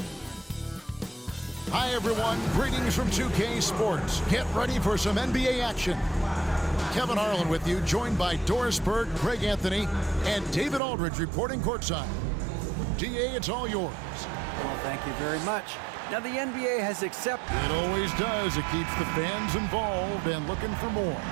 Hi, everyone. Greetings from 2K Sports. Get ready for some NBA action. Kevin Harlan with you, joined by Doris Burke, Greg Anthony, and David Aldridge reporting courtside. DA, it's all yours. Well, thank you very much. Now, the NBA has accepted. It always does. It keeps the fans involved and looking for more.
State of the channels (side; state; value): left; drops out; at 10.8 s